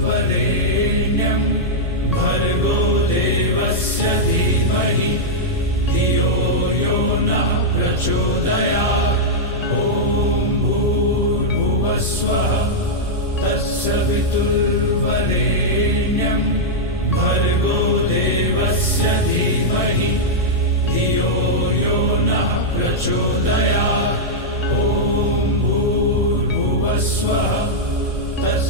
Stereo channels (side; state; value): both; normal; correlation -0.06